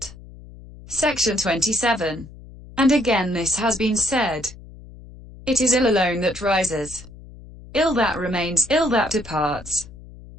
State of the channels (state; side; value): noise; left; hum, 18 dB below the sound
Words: Section 27. And again this has been said. It is ill alone that rises. Ill that remains, ill that departs.